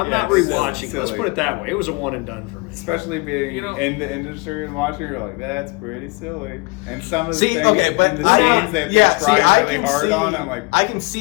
Yeah, not it's rewatching. silly. Let's put it that way. It was a one and done for me. Especially being You know- in the industry and watching, you're like, that's pretty silly. And some of the See, things okay, but in the I- scenes that yeah, they try I really can hard see, on, I'm like, I can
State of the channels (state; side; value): quieter; right; 27.5 dB